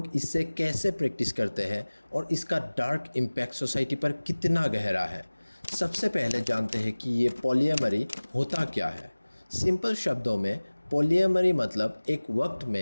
इससे कैसे प्रैक्टिस करते हैं और इसका डार्क इम्पैक्ट सोसाइटी पर कितना गहरा है। सबसे पहले जानते हैं कि ये पॉलीएमरी होता क्या है। सिंपल शब्दों में पॉलीएमरी मतलब एक वक्त में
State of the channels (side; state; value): both; inverted; correlation -1.00